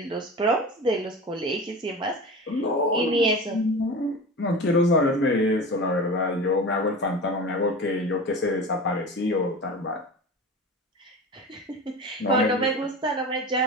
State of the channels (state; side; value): normal; both; correlation 0.31